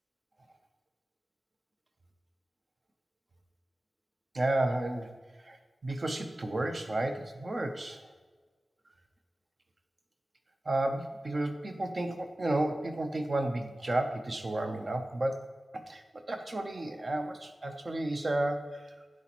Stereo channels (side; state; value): both; normal; correlation 0.96